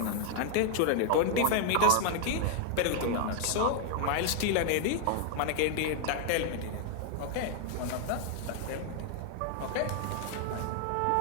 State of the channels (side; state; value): both; different; correlation 0.00